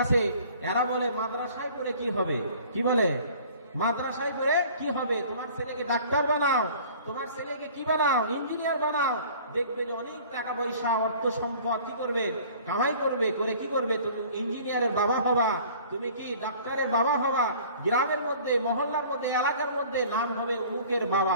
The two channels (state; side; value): inverted; both; correlation -0.49